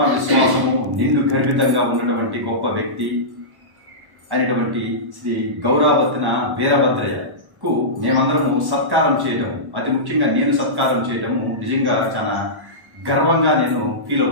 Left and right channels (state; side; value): late; left; 1.1 ms